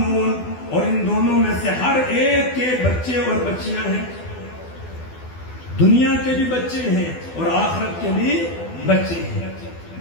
اور ان دونوں میں سے ہر ایک کے بچے اور بچیاں ہیں. دنیا کے بھی بچے ہیں اور آخرت کے بھی بچے ہیں.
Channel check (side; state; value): right; late; 12 ms